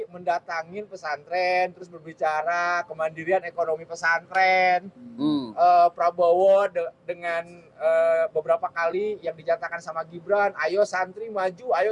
mendatangin pesantren, terus berbicara kemandirian ekonomi pesantren. Prabowo dengan beberapa kali yang dinyatakan sama Gibran, ayo santri maju, ayo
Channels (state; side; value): identical; both; correlation 1.00